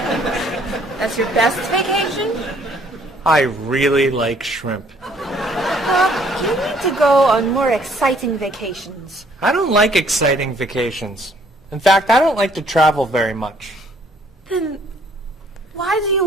That's your best vacation? I really like shrimp. You need to go on more exciting vacations. I don't like exciting vacations. In fact, I don't like to travel very much. Then why do you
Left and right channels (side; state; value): both; normal; correlation 0.62